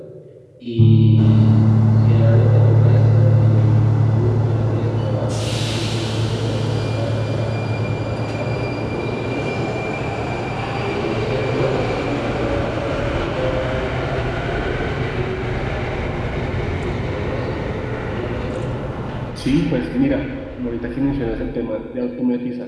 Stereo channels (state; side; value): identical; both; correlation 1.00